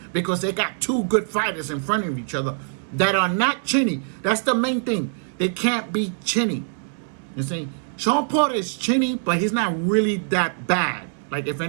because they got two good fighters in front of each other that are not chinny. That's the main thing. They can't be chinny. You see? Sean Porter is chinny, but he's not really that bad. Like, if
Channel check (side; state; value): left; silent; 62 dB below the other